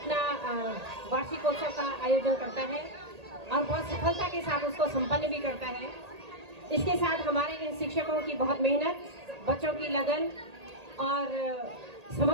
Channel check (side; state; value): left; late; 1.8 ms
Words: वार्षिकोत्सव का आयोजन करता है और बहुत सफलता के साथ उसको संपन्न भी करता है। इसके साथ हमारे इन शिक्षकों की बहुत मेहनत, बच्चों की लगन और